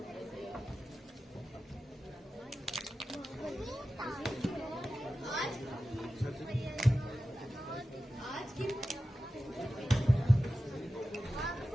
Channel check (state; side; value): normal; both; correlation 0.93